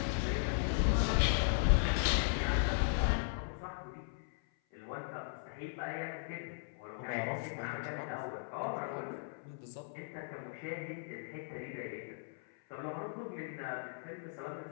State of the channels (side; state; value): right; silent; 53 dB below the other